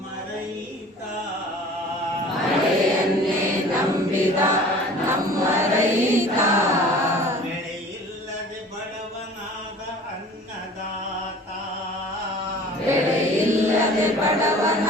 ರೈತ ಮಳೆಯನ್ನೇ ನಂಬಿದ ನಮ್ಮ ರೈತ ಬೆಳೆಯಿಲ್ಲದೆ ಬಡವನಾದ ಅನ್ನದಾತ ಬೆಳೆಯಿಲ್ಲದೆ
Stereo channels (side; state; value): both; normal; correlation 0.45